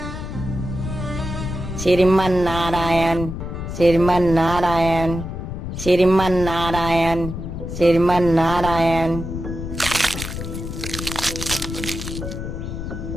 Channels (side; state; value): left; noise; rumble, 6 dB below the sound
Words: श्रीमन नारायण, श्रीमन नारायण, श्रीमन नारायण, श्रीमन नारायण।